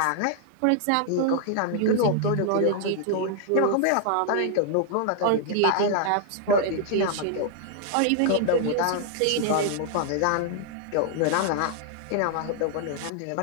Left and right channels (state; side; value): different; both; correlation 0.00